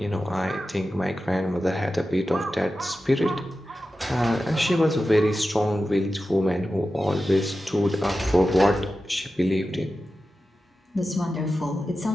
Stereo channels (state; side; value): normal; both; correlation 0.93